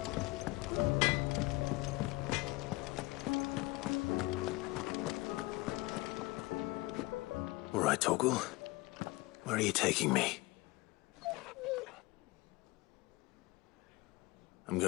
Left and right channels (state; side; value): quieter; right; 21.9 dB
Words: All right, Torgal. Where are you taking me? I'm